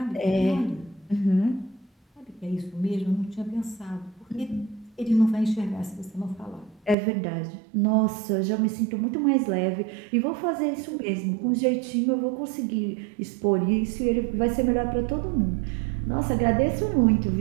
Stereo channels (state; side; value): drops out; left; at 7.0 s